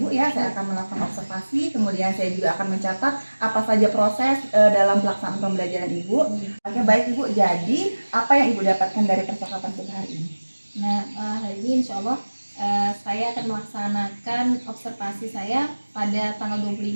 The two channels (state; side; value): inverted; both; correlation -1.00